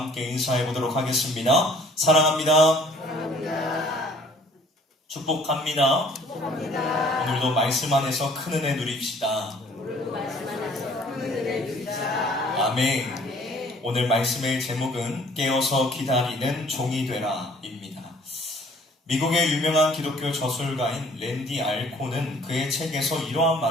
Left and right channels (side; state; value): both; normal; correlation 0.55